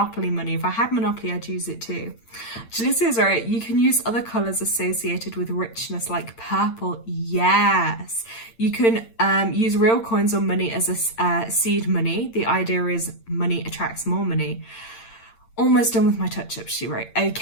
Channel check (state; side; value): late; right; 8.8 ms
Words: money. If I had Monopoly, I'd use it too. Jalicia's right, you can use other colours associated with richness like purple. Yes, you can use real coins or money as a seed money. The idea is money attracts more money. Almost done with my touch-up, she wrote.